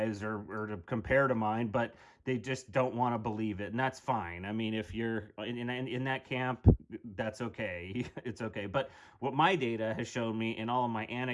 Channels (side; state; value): both; identical; correlation 1.00